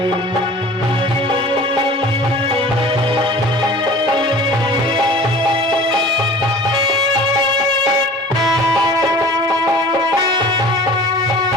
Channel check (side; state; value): both; normal; correlation 0.44